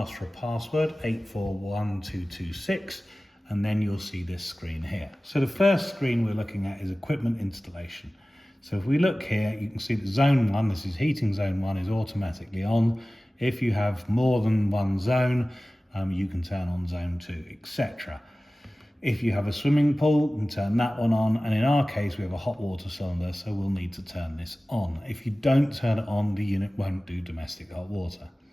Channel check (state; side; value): normal; both; correlation 0.97